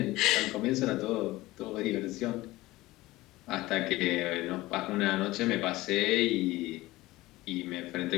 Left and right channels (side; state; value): right; quieter; 18.7 dB